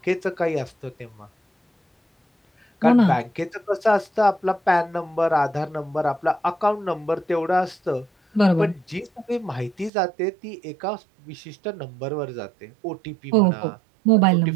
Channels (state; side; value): drops out; left; at 9.9 s